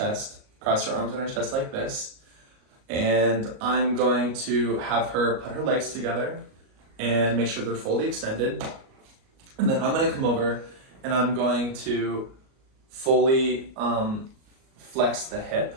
on her chest like this. And I'm going to have her put her legs together and make sure they're fully extended. And then I'm going to come over and I'm going to fully flex the hip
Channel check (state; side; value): late; left; 37 ms